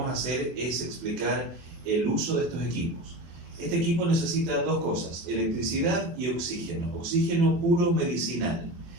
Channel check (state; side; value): late; left; 24 ms